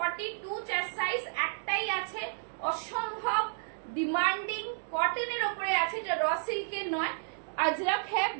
চেস্ট সাইজ একটাই আছে, অসম্ভব ডিমান্ডিং, কটনের উপরে আছে, এটা র সিল্কের নয়, अजरक है,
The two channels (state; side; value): silent; left; digital silence